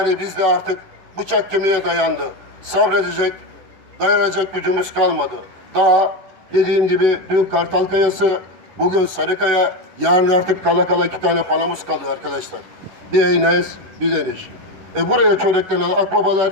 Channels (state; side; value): late; left; 10 ms